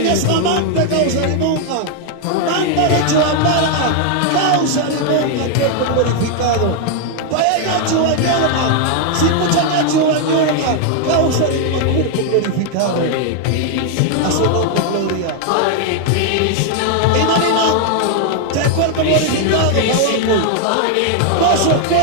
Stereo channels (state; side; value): different; both; correlation 0.00